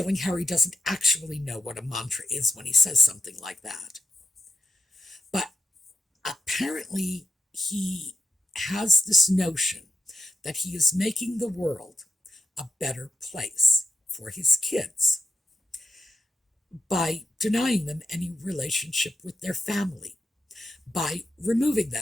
Harry doesn't actually know what a mantra is when he says something like that. But apparently he has this notion that he is making the world a better place for his kids by denying them any relationship with their family, by removing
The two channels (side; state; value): both; normal; correlation 0.86